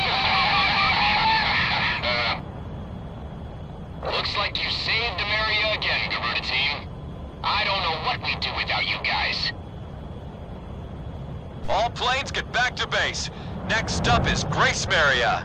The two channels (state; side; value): identical; both; correlation 1.00